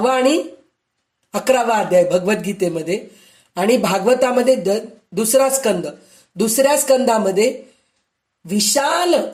आणि 11वा अध्याय भगवद्गीतेमध्ये, आणि भागवतामध्ये दुसऱ्या स्कंदामध्ये विशाल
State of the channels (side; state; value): both; identical; correlation 1.00